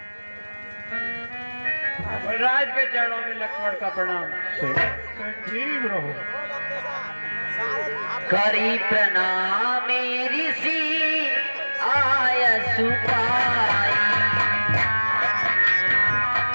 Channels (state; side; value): inverted; both; correlation -1.00